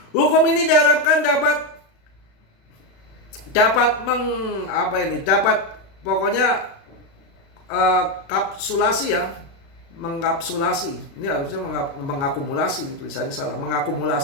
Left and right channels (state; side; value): late; right; 35 ms